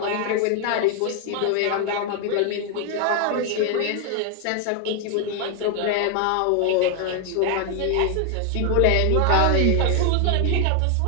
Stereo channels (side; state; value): both; different; correlation 0.00